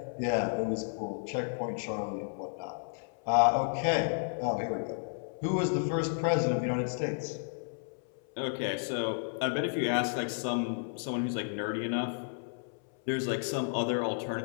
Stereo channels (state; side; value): silent; right; 56 dB below the other